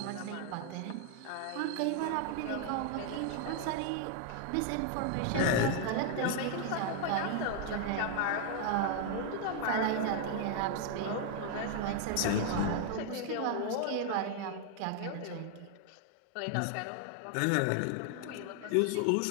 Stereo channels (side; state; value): both; different; correlation 0.00